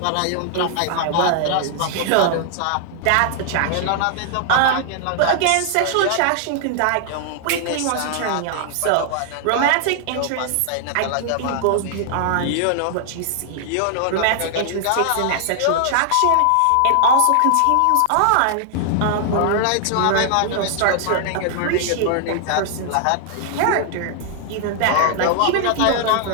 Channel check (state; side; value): different; both; correlation 0.00